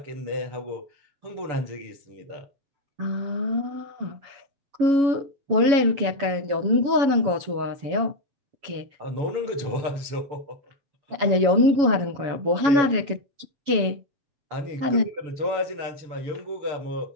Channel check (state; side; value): late; left; 7.2 ms